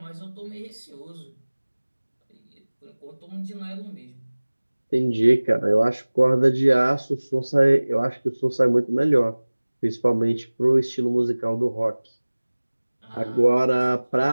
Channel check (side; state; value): both; inverted; correlation -1.00